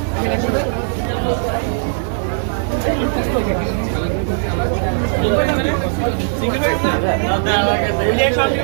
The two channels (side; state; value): left; silent; digital silence